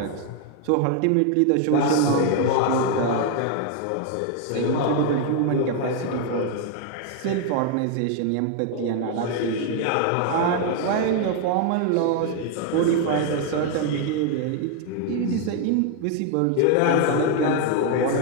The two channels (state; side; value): different; both; correlation 0.00